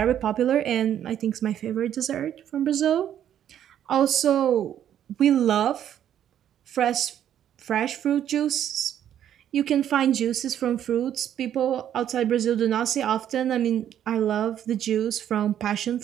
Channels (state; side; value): quieter; left; 10.3 dB